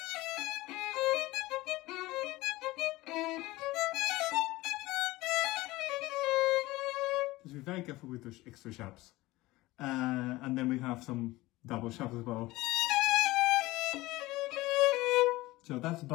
Just be very careful with those extra sharps. And then we have some double sharps as well. So that's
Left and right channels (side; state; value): right; quieter; 19.2 dB